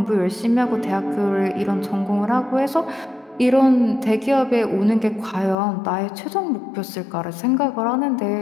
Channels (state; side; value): drops out; right; at 5.6 s